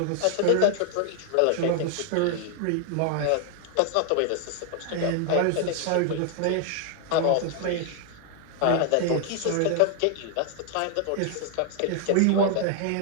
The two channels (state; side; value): different; both; correlation 0.00